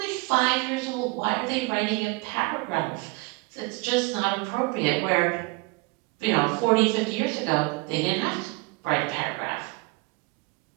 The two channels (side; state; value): left; quieter; 25.4 dB